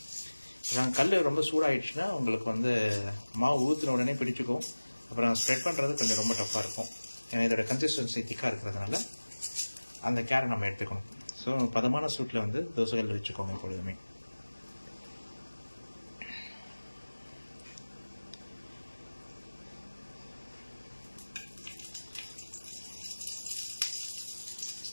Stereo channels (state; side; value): inverted; both; correlation -1.00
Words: கல் ரொம்ப சூடாகிடுச்சுன்னா உங்களுக்கு வந்து மாவு ஊற்றின உடனே பிடிச்சிக்கும். அப்புறம் ஸ்ப்ரெட் பண்ணுறது கொஞ்சம் ரொம்ப டஃப்பாக இருக்கும். ஏன்னா இதோட கன்சிஸ்டன்சி திக்காக இருக்கிறதுனால அந்த கேரை நம்ம எடுத்துக்கணும். ஸோ பதமான சூட்டில் வந்து தோசைகள் வச்சுக்கோங்க எப்பொழுதுமே.